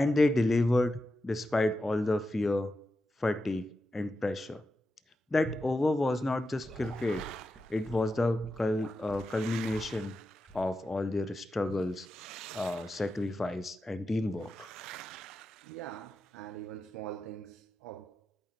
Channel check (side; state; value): both; normal; correlation 0.90